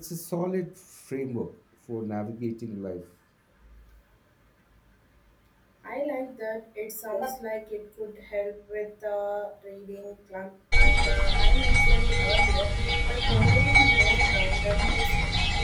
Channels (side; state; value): both; identical; correlation 1.00